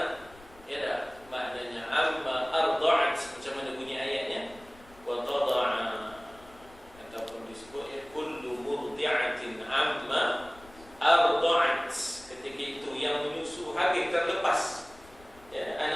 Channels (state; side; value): noise; left; rumble, 24 dB below the sound